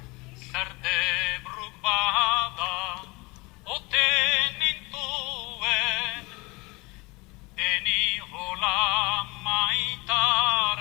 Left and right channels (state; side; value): quieter; right; 25.1 dB